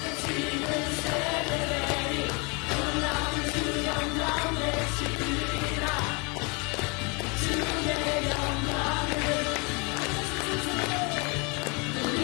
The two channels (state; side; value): quieter; right; 31.2 dB